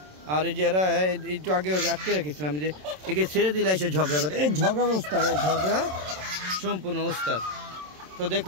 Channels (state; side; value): late; left; 27 ms